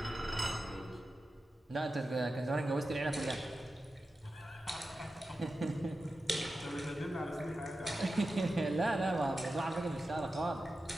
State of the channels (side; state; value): both; normal; correlation 0.92